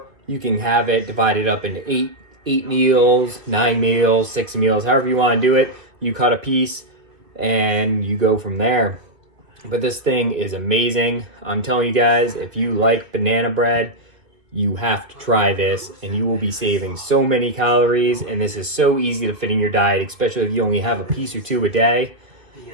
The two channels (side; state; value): left; late; 2.5 ms